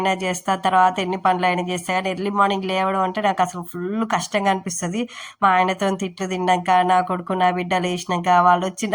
చేస్తా, తర్వాత ఎన్ని పనులైనా చేస్తా, కానీ ఎర్లీ మార్నింగ్ లేవడం అంటే నాకు అసలు ఫుల్ కష్టంగా అనిపిస్తుంది. మా ఆయనతో తిట్లు తిన్నాక, నా కొడుకు నా బిడ్డ లేచినాక, వాళ్ళు వచ్చి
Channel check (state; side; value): identical; both; correlation 1.00